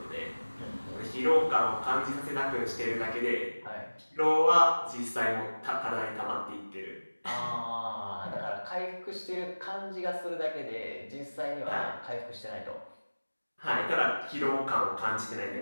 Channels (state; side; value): inverted; both; correlation -1.00